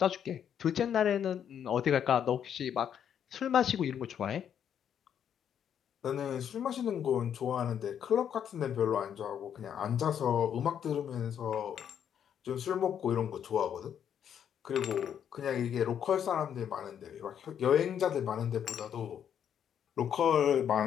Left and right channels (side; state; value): right; quieter; 8.8 dB